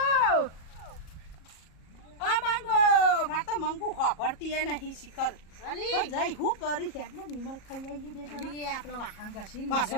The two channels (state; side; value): late; right; 37 ms